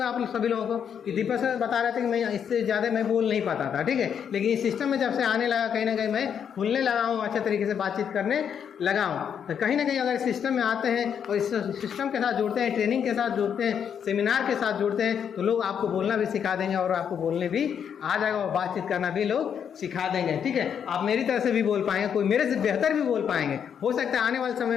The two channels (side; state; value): right; quieter; 8.0 dB